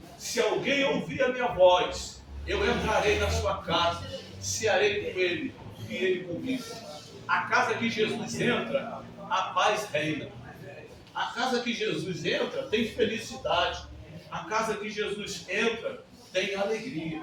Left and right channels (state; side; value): identical; both; correlation 1.00